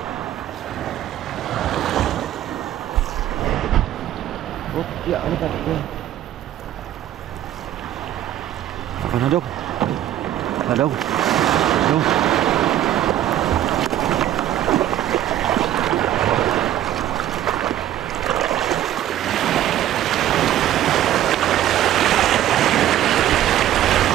Oh, ya, ano ka? Ako na dong. Dong. Dong.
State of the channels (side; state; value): left; quieter; 12.4 dB